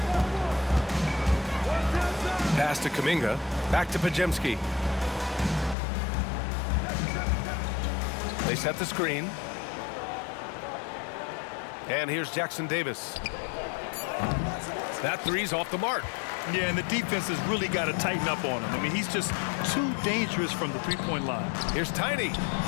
Pass to Kuminga. Back to Podziemski. They set the screen. And here's Jackson Davis. That three's off the mark. Yeah, and the defense has really got to tighten up on him. I mean, he's just too dangerous from the three-point line. Here's Tiny.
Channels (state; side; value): drops out; right; at 5.8 s